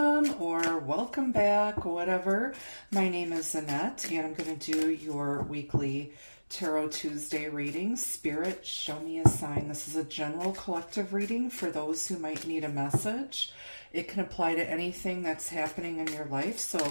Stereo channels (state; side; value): inverted; both; correlation -1.00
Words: or welcome back, whatever. My name is Annette and I'm going to do your weekly Tarot Tuesday reading. Spirit, show me a sign. This is a general collective reading for those who might need a message. It can apply to anything that's happening in your life,